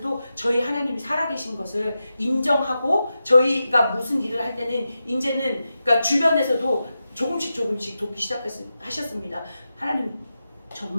저희 하나님이 살아계신 것을 인정하고 저희가 무슨 일을 할 때는 이제는 그러니까 주변에서도 조금씩 돕기 시작하셨습니다. 하나님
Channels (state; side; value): inverted; both; correlation -0.91